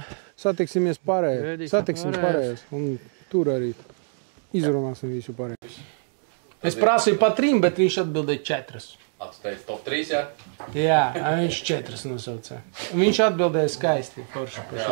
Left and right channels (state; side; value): silent; left; 57 dB below the other